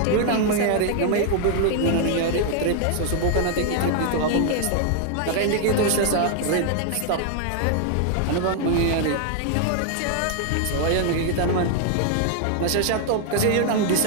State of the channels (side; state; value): both; different; correlation 0.00